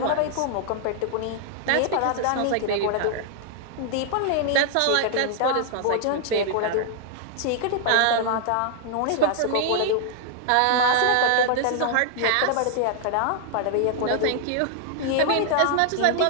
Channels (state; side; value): different; both; correlation 0.00